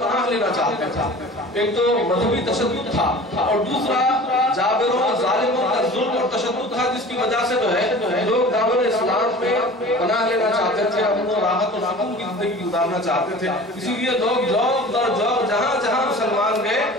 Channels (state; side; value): normal; both; correlation 0.41